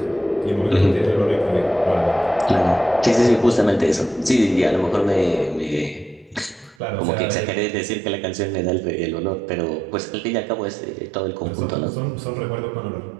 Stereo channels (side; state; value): left; drops out; at 6.8 s